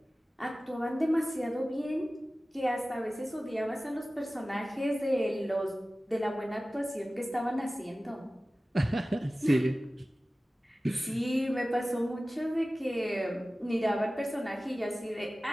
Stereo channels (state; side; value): normal; both; correlation 0.97